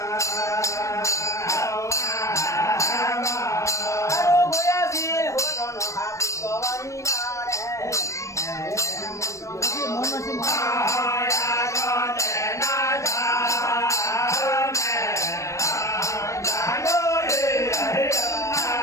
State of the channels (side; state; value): right; late; 0.15 ms